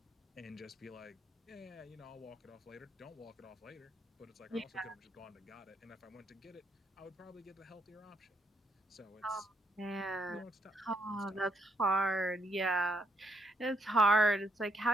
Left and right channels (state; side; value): normal; both; correlation 0.73